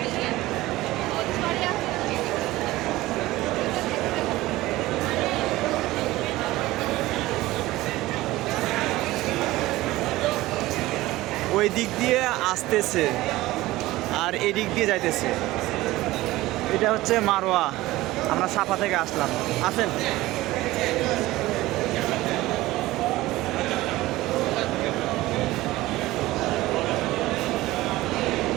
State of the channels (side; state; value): left; quieter; 17.8 dB